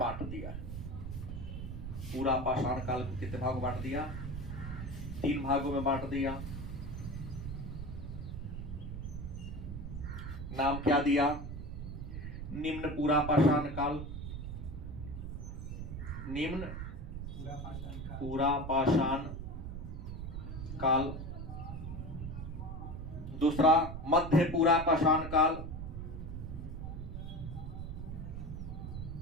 दिया है। पूरा पाषाण काल को कितने भागों बांट दिया? 3 भागों में बांट दिया। नाम क्या दिया? निम्न पूरा पाषाण काल, निम्न पूरा पाषाण काल। दूसरा मध्य पूरा पाषाण काल,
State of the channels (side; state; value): right; noise; rumble, 6 dB below the sound